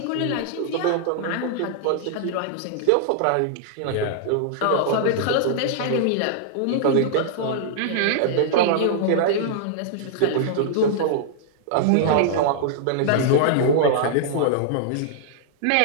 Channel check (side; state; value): both; different; correlation -0.01